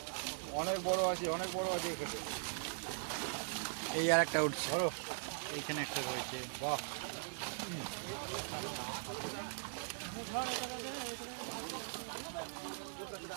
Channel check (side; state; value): left; silent; 51 dB below the other